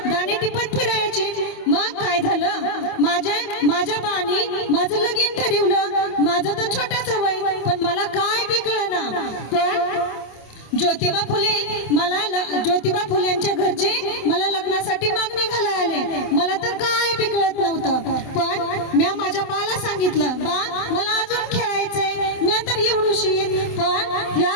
दाणे टिपत फिरायची. मग काय झालं, माझ्या बाणी माझं लगीन ठरवलं. माझं तर छोटंच वय, पण मला काय बी कळेना. पण ज्योतिबा फुलेंच्या घरचे मला लग्नासाठी मागणी घालायला आले. मला तर काय बी कळत नव्हतं. पण मी माझ्या बाला सांगितलं, बा मला अजून खेळायचंय, मी तर एवढूशी. पण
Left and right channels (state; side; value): late; right; 27 ms